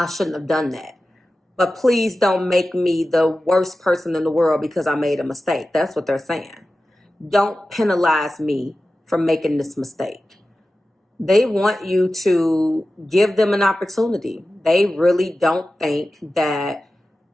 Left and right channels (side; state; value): both; normal; correlation 0.94